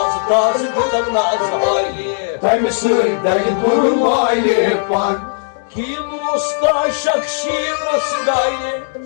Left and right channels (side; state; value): right; silent; digital silence